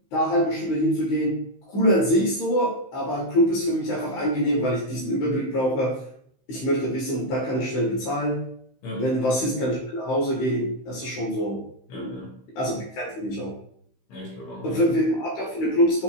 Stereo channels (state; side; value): late; right; 15 ms